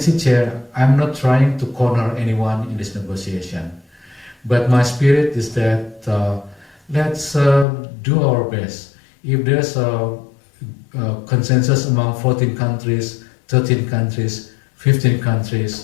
chair, I'm not trying to corner anyone in this negotiation. But my spirit is that let's do our best. If there's a consensus among 14 countries, 13 countries, 15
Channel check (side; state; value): right; drops out; at 7.7 s